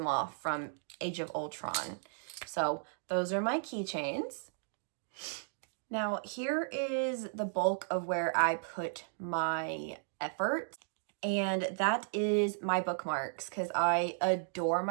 from Age of Ultron. So those are my keychains. Now, here is the bulk of where I put my effort. And that is my bookmarks, because I adore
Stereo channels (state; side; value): silent; left; digital silence